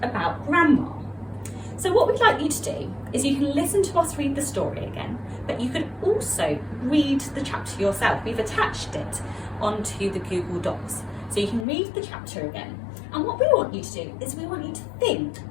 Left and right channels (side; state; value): right; drops out; at 11.7 s